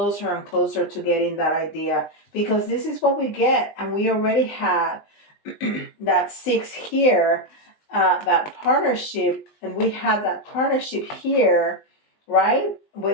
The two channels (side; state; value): right; late; 20 ms